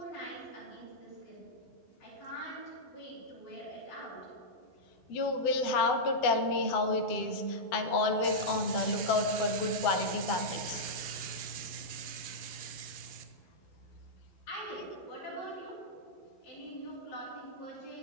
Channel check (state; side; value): late; right; 12 ms